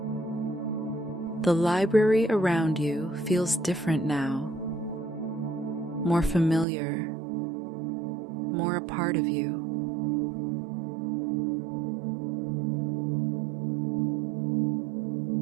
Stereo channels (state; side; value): drops out; left; at 6.7 s